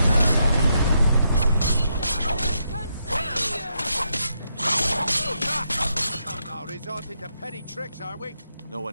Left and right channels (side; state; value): both; inverted; correlation -0.80